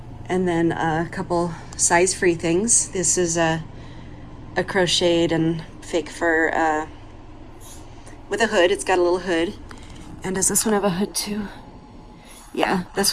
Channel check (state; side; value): identical; both; correlation 1.00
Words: And then a couple size-free things. This is a crocheted and fake fur with a hood. It's got a little hood. And does this one have a hood too? Yeah, this